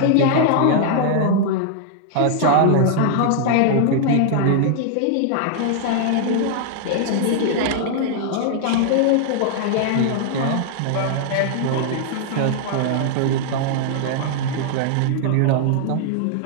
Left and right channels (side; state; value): both; different; correlation -0.01